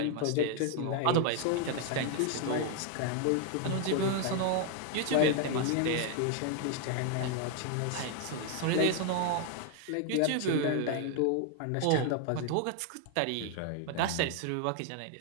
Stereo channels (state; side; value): different; both; correlation 0.00